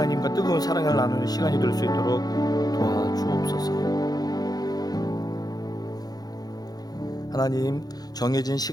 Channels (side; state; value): right; late; 0.19 ms